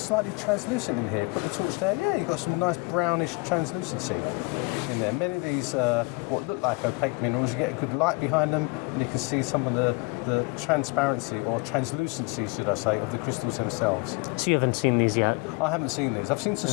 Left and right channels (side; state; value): right; quieter; 28.5 dB